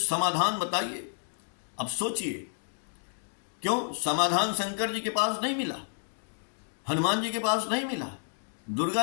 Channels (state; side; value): silent; right; digital silence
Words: बताइए। अब सोचिए, क्यों समाधान शंकर जी के पास नहीं मिला, हनुमान जी के पास नहीं मिला, दुर्गा